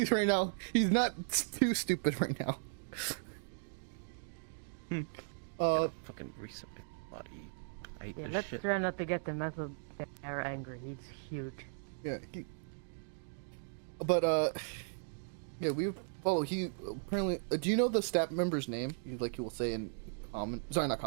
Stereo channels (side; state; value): left; silent; digital silence